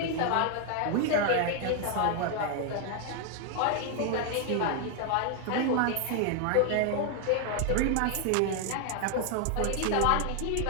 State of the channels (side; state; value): both; different; correlation 0.00